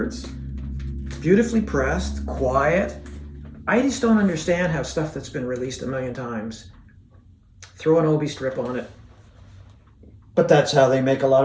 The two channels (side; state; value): both; identical; correlation 1.00